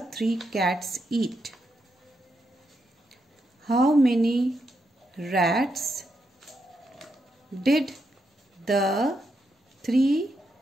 3 cats eat? How many rats did the 3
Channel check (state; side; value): normal; both; correlation 0.82